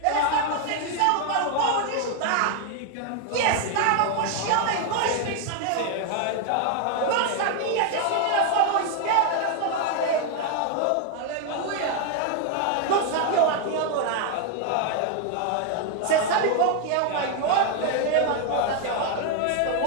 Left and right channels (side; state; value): both; different; correlation 0.01